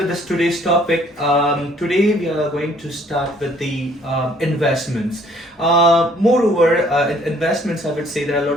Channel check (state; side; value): normal; both; correlation 0.60